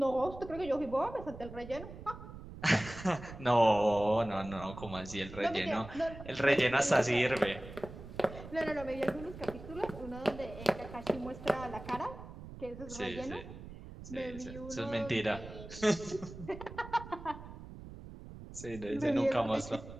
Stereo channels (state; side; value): noise; right; rumble, 13 dB below the sound